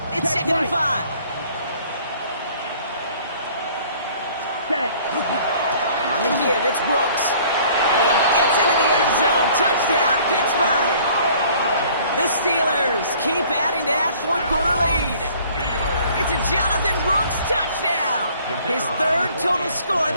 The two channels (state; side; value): inverted; both; correlation -0.55